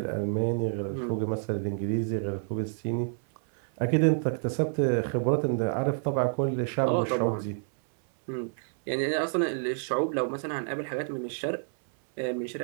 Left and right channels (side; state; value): left; silent; 59 dB below the other